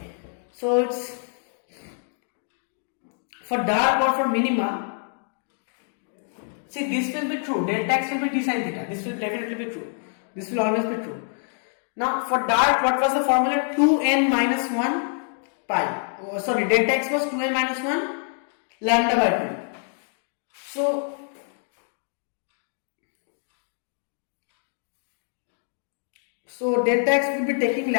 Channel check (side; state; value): right; silent; 61 dB below the other